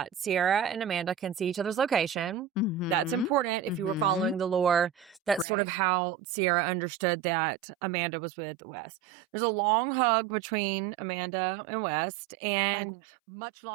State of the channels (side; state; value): left; drops out; at 5.5 s